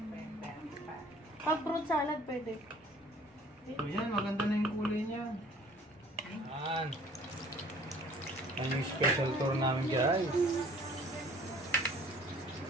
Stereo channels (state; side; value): normal; both; correlation 0.53